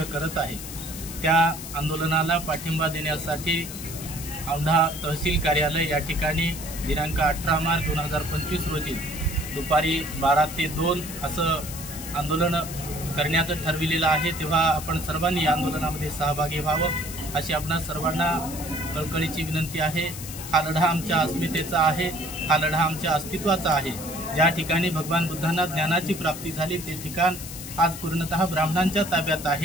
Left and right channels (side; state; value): left; noise; hiss, 10 dB below the sound